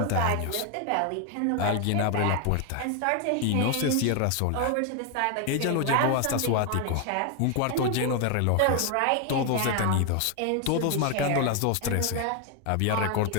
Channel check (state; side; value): different; both; correlation 0.01